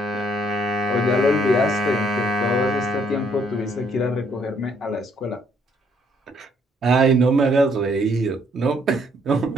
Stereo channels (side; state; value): both; normal; correlation 0.67